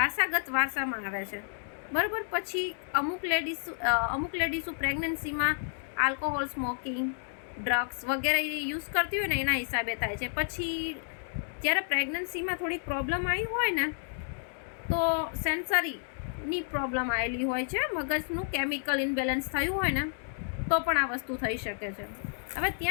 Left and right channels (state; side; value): silent; right; digital silence